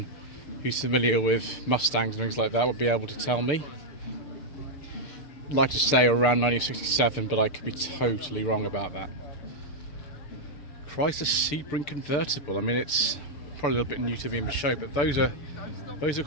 who's familiar with Mustangs and things like that would be able to tell me. I'd like to say around 1967, but I could be totally wrong about that. Chrysler Sebring convertible. I mean, it's probably a little bit new to me in the show, but those are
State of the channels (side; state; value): right; late; 6.8 ms